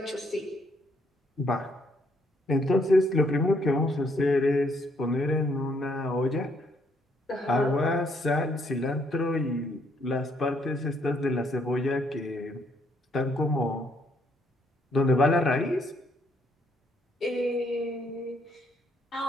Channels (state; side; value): normal; both; correlation 0.71